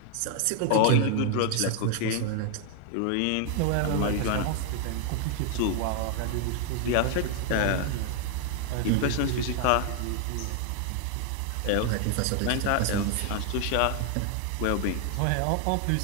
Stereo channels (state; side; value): different; both; correlation 0.00